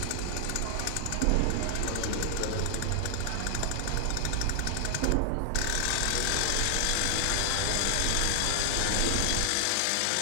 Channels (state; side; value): different; both; correlation 0.00